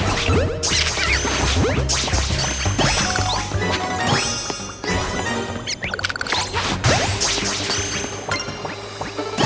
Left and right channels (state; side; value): identical; both; correlation 1.00